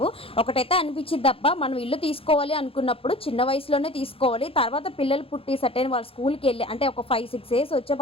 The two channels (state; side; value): late; right; 0.27 ms